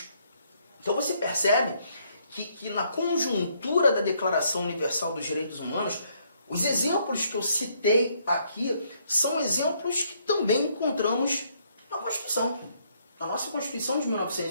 Então você percebe que na conjuntura da Declaração Universal dos Direitos Humanos, os exemplos que eu citei aqui são exemplos que também encontramos na Constituição, na nossa Constituição de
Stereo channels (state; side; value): inverted; both; correlation -0.70